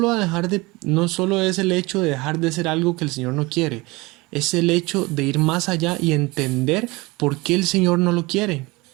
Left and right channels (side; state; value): left; quieter; 23.3 dB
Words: es el hecho de dejar de ser algo que el Señor no quiere, es el hecho de ir más allá y entender por qué el Señor no lo quiere,